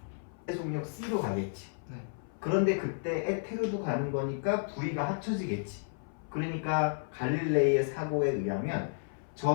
속력 C로 가겠지. 네. 그런데 그때 에테르도 가는 거니까 V가 합쳐지겠지. 그러니까 갈릴레이의 사고에 의하면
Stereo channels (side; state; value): right; silent; 56 dB below the other